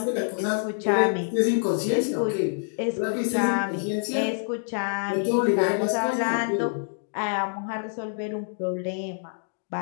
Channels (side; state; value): right; silent; 61 dB below the other